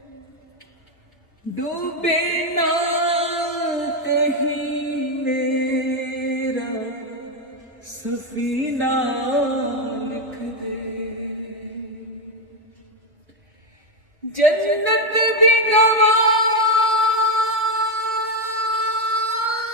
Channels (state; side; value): normal; both; correlation 0.07